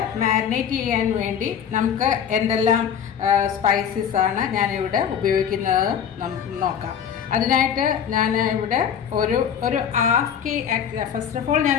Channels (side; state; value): right; quieter; 8.2 dB